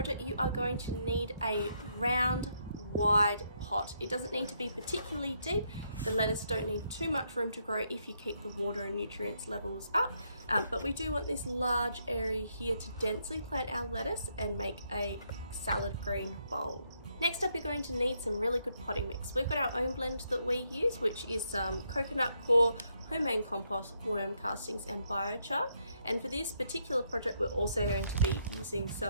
you are going to need a round, wide pot. It doesn't need to be particularly deep. The lettuce don't need too much room to grow if you keep the water and nutrients levels up, but we do want this large area here to densely plant our lettuce and make a salad green bowl. Next up, you're going to need some really good potting mix. We've got our own blend that we use, which is some coconut coir, homemade compost, worm castings and biochar. And for this particular project, we're also going to be using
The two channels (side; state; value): both; inverted; correlation -0.75